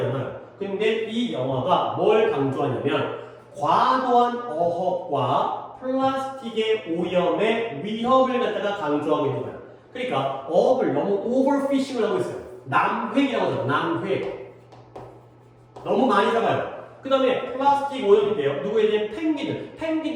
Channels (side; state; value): both; identical; correlation 1.00